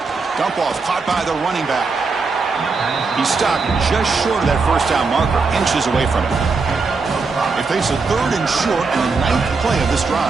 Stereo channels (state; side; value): quieter; left; 4.4 dB